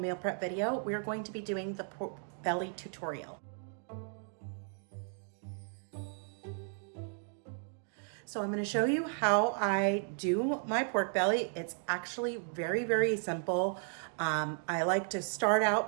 prep video, we are going to be doing the pork belly tutorial. So I'm going to show you how I do my pork belly. It's actually very simple. I like to start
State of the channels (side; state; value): left; silent; 55 dB below the other